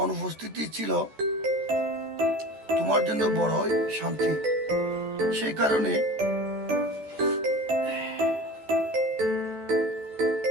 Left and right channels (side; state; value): left; late; 14 ms